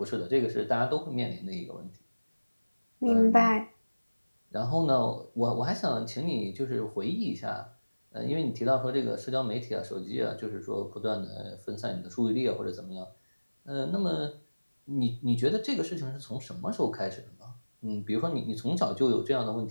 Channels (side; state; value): both; inverted; correlation -1.00